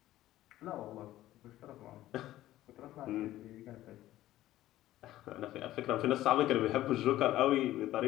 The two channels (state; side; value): quieter; right; 14.7 dB